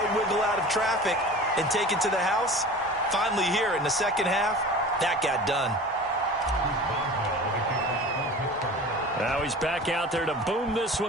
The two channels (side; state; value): both; normal; correlation 0.38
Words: wiggle out of traffic and take it to the house. Finally here in the 2nd half, that got done. Now he's back out there to boom this